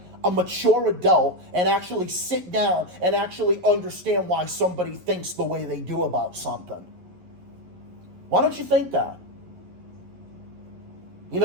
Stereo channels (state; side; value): late; left; 11 ms